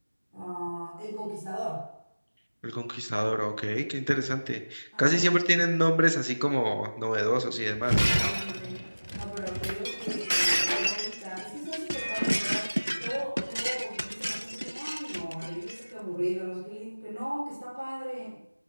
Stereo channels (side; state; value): both; inverted; correlation -1.00